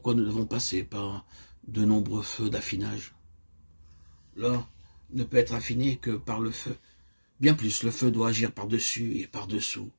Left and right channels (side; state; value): both; inverted; correlation -1.00